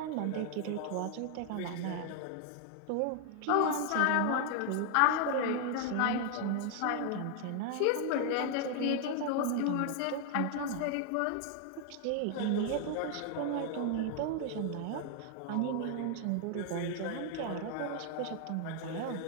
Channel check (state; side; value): different; both; correlation 0.00